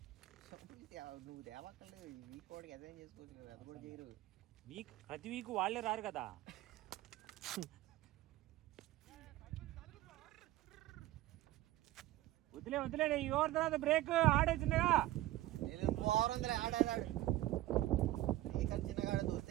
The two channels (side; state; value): left; quieter; 15.7 dB